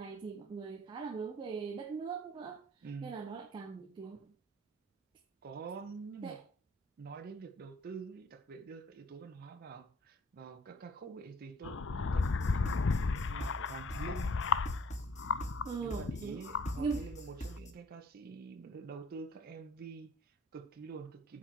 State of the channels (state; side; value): normal; both; correlation 0.54